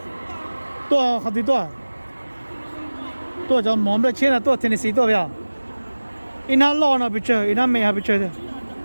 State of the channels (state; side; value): inverted; both; correlation -1.00